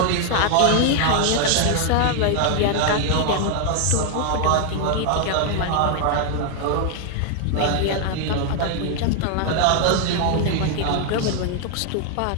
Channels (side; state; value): both; different; correlation 0.00